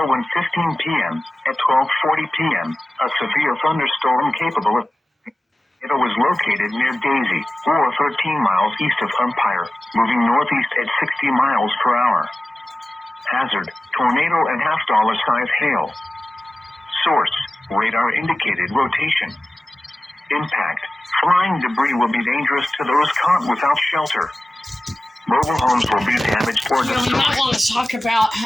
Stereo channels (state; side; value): normal; both; correlation 0.96